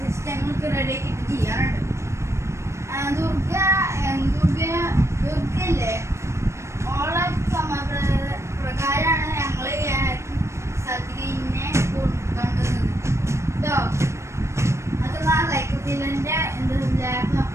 റെഡി ആക്കിയിട്ട് ചെയ്യാറുണ്ട്. ദുർഗല്ലേ ഓളെ പ്രകാരമാണ് ഞങ്ങൾ സദ്യനെ കണ്ടത് കേട്ടോ. അത് ലൈക്കത്തിലെ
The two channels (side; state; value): left; late; 0.13 ms